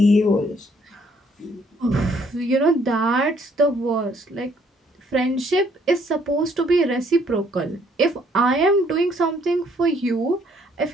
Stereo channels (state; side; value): normal; both; correlation 0.65